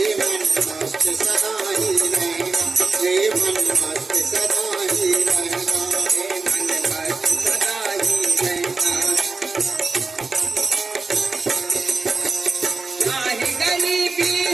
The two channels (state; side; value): quieter; left; 4.0 dB